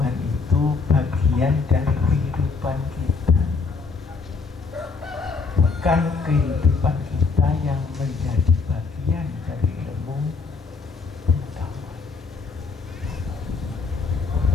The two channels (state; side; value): quieter; right; 4.5 dB